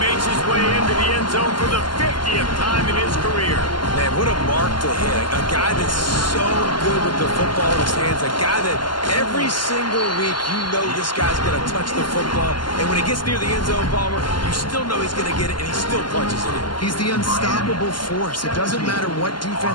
his way into the end zone for the 50th time in his career. Man, what a mark to hit. A guy that's so good with the football in his hands. A guy that every single week you know this guy's going to touch the football. And when he gets near the end zone, Palmer, you still know he's going to get it, and he still punches it in. He's the unstoppable force. It doesn't matter what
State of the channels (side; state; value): right; late; 0.71 ms